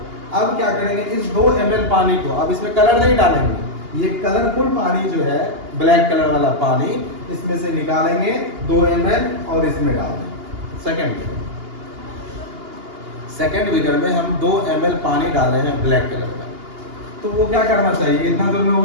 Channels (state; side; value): late; left; 2.8 ms